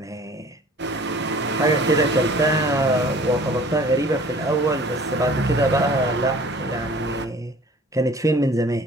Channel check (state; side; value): normal; both; correlation 0.49